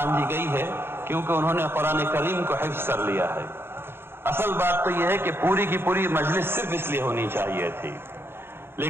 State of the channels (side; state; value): left; late; 0.11 ms